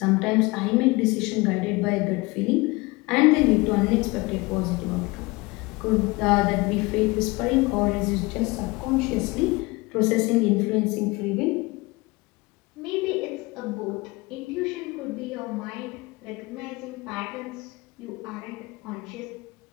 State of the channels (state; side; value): quieter; right; 23.8 dB